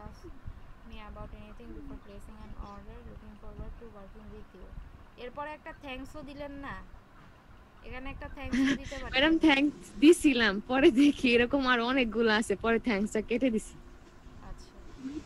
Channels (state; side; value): identical; both; correlation 1.00